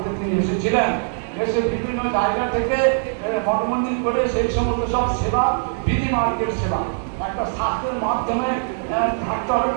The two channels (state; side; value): silent; left; 65 dB below the other